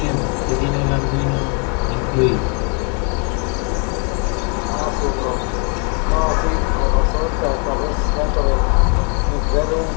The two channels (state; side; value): quieter; right; 38.5 dB